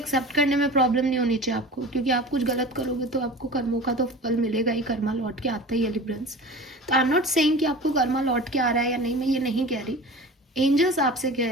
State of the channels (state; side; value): normal; both; correlation 0.37